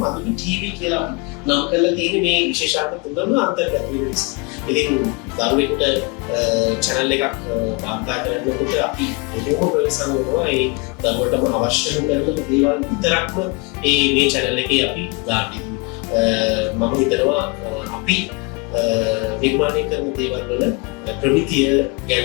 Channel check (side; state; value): right; quieter; 29.2 dB